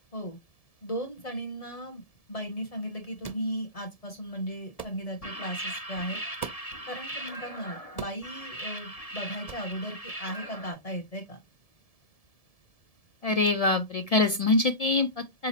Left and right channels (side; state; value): right; late; 1.7 ms